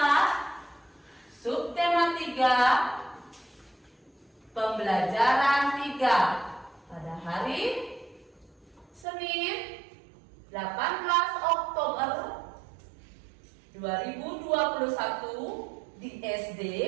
subtema 3, pembelajaran 3 pada hari Senin 18 Oktober 2021 di SD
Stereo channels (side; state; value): left; drops out; at 9.1 s